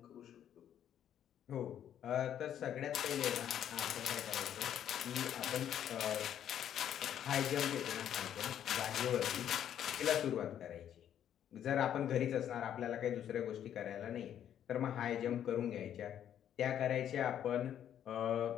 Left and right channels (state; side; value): quieter; right; 10.1 dB